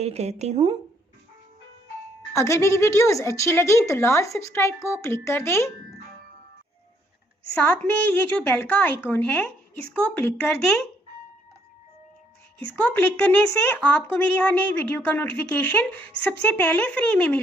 करती हूँ। अगर मेरी वीडियोस अच्छी लगी तो लाल सब्सक्राइब को क्लिक कर दें। साथ में ये जो बेल का आइकॉन है इसको क्लिक कर दें। इसको क्लिक करने से आपको मेरी हर नई वीडियो का नोटिफिकेशन सबसे पहले फ्री में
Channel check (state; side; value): normal; both; correlation 0.69